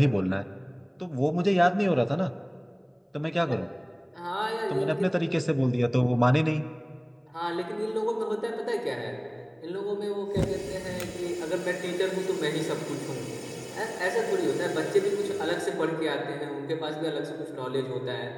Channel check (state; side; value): identical; both; correlation 1.00